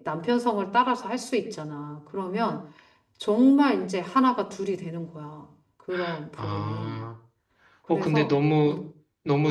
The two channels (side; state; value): both; identical; correlation 1.00